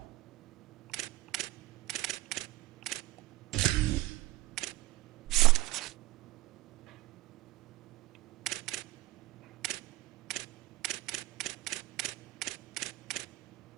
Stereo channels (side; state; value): left; quieter; 19.6 dB